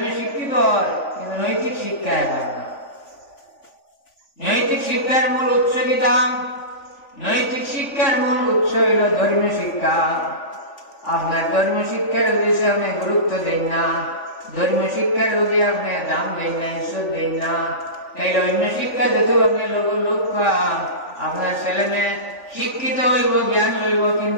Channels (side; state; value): right; late; 3.5 ms